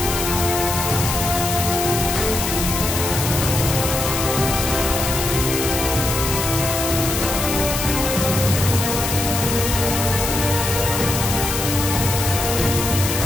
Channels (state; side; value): noise; left; hiss, 2 dB below the sound